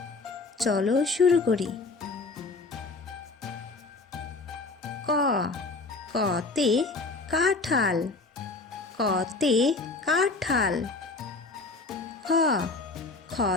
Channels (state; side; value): quieter; right; 3.7 dB